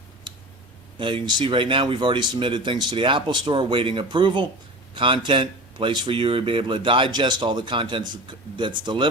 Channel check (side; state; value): both; normal; correlation 0.33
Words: Now, you can see right now we've already submitted things to the Apple Store, waiting approval. Content, place for you to be able to digest all the content that's